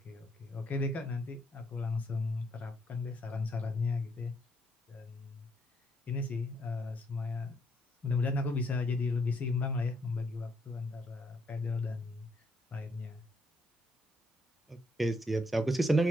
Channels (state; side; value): normal; both; correlation 0.73